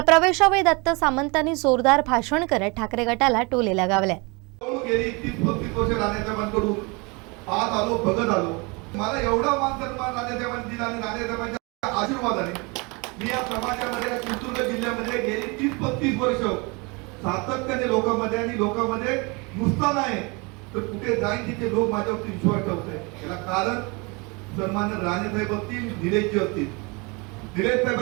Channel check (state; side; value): quieter; left; 28.7 dB